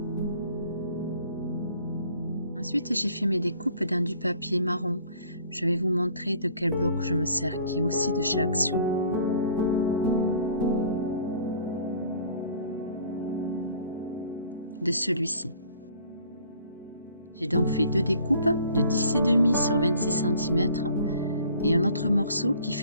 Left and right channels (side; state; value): both; inverted; correlation -0.54